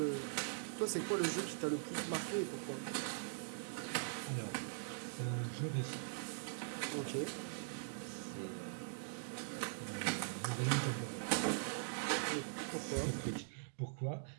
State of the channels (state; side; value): silent; left; digital silence